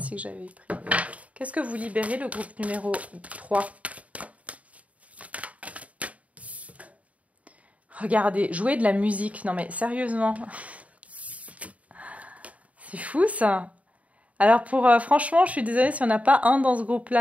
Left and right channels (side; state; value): left; late; 0.068 ms